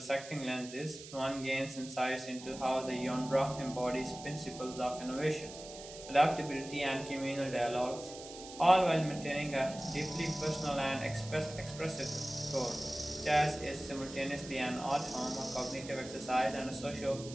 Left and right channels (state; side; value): noise; right; hiss, 14 dB below the sound